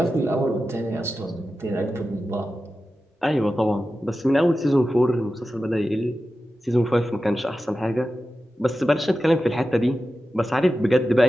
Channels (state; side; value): normal; both; correlation 0.93